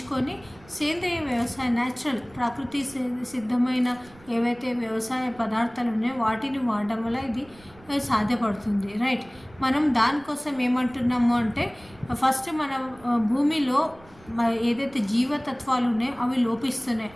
సేంద్రియ వ్యవసాయం, న్యాచురల్ ప్రకృతి సిద్ధమైన ఏవైతే వ్యవసాయ పదార్థాలు ఉన్నాయో వాటిని వాడడం వల్ల ఇది సాధ్యపడుతుంది. రైట్. మనం దానికోసం ఏమంటున్నాము అంటే ఫస్ట్ మన భూమిలో ఏదైతే జీవతత్వాలు ఉన్నాయో అవి లోపిస్తున్నాయి.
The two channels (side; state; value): right; noise; rumble, 24 dB below the sound